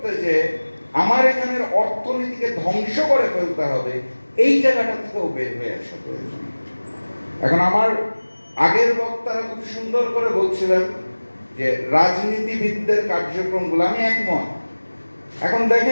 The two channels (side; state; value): both; inverted; correlation -1.00